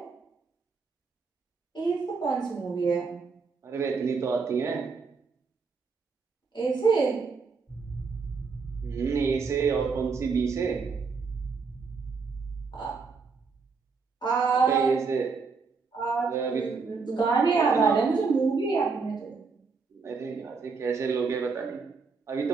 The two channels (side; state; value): left; quieter; 4.8 dB